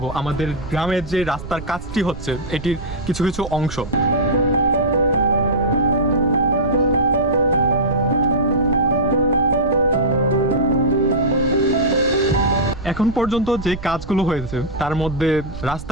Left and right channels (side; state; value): right; noise; rumble, 12 dB below the sound